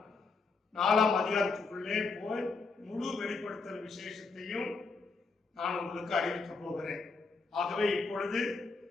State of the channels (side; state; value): right; quieter; 4.3 dB